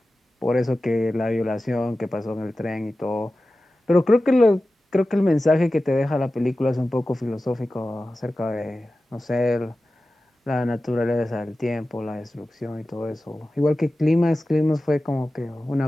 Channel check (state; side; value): normal; both; correlation 0.95